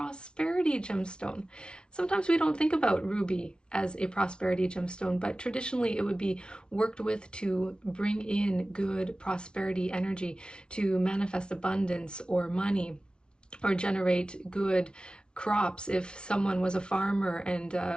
gemstone. Sometimes we don't think about ruby as a prosperity gemstone, but traditionally it would be worked with to bring in good prosperity energy, to manifest abundance or money, or generate good crops. If someone was a farmer and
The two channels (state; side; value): late; right; 0.056 ms